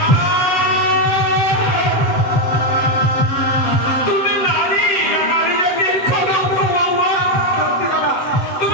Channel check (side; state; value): right; late; 8.1 ms